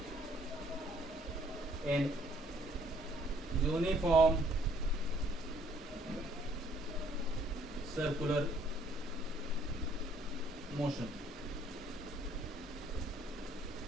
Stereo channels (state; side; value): normal; both; correlation 0.63